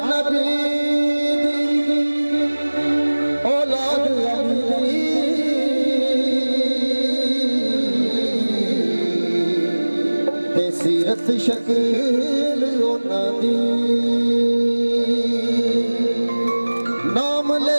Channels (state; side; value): inverted; both; correlation -1.00